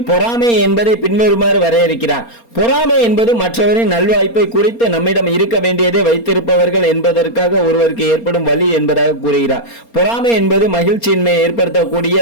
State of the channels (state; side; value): late; right; 4.3 ms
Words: பொறாமை என்பதை பின்வருமாறு வரையறுக்கிறார். பொறாமை என்பது மற்றவரின் நல்வாய்ப்பை குறித்து நம்மிடம் இருக்க வேண்டியதை வைத்திருப்பவர்கள் என்பதற்காக ஒருவருக்கு ஏற்படும் வலி என்பதாக கூறுகிறார். பொறாமை என்பது மகிழ்ச்சியின்மையை